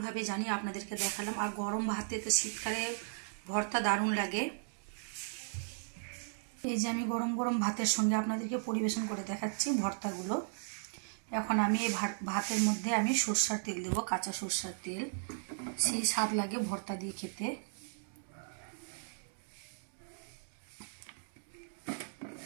জানি আপনাদেরকে দেখালাম। আর গরম ভাতে তো শীতকালে ভর্তা দারুণ লাগে। এই যে আমি গরম গরম ভাতের সঙ্গে আপনাদেরকে পরিবেশন করে দেখাচ্ছি ভর্তাগুলো। এখন আমি এই ভাতের মধ্যে আমি সরষের তেল দেবো, কাঁচা সরষের তেল, সেই স্বাদ লাগে ভর্তা দিয়ে খেতে।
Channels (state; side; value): silent; left; digital silence